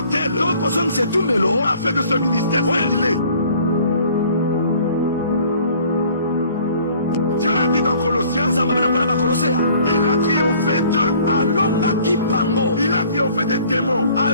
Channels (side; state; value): both; inverted; correlation -0.55